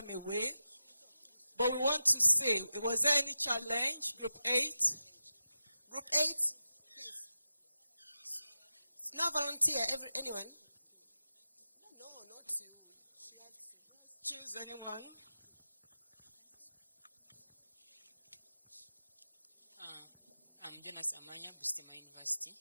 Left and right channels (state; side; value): inverted; both; correlation -0.91